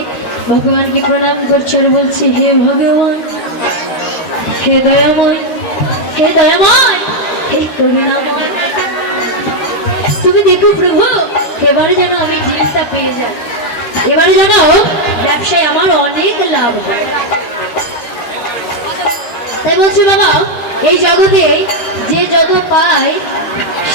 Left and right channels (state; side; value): late; right; 13 ms